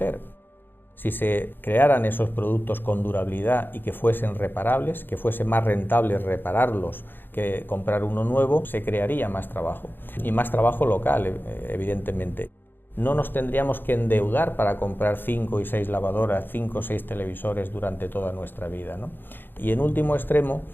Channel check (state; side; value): late; right; 0.097 ms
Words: Si se crearan esos productos con durabilidad y que fuesen reparables, que fuese más rentable repararlos que comprar uno nuevo, se crearía más trabajo. Y más trabajo local, evidentemente. No nos tendríamos que endeudar para comprar 5 y 6 lavadoras, 5 o 6 televisores durante toda nuestra vida, ¿no? Y en último extremo,